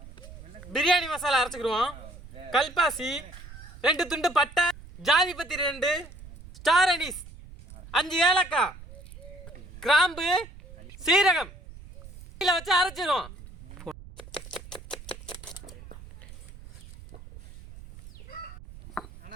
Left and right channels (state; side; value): noise; right; rumble, 17 dB below the sound